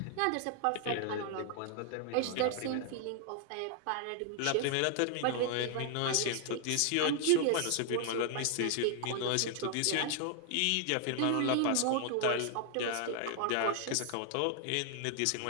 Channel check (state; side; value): different; both; correlation 0.00